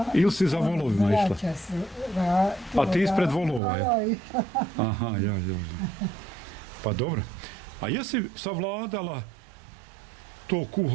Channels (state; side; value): drops out; left; at 3.6 s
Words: Ili si za volovima išla? A ti ispred volova, je? Aha, ja. Pa dobro. A jesi savladala to